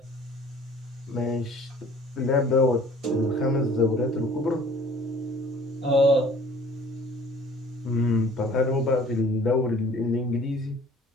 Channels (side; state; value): both; normal; correlation 0.51